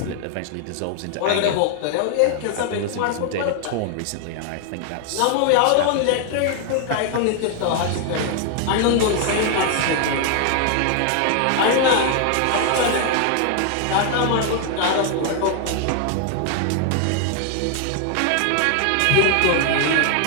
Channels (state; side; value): different; both; correlation 0.00